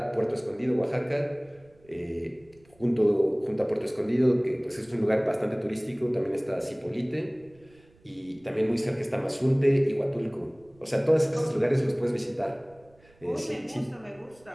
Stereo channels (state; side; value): noise; right; rumble, 29 dB below the sound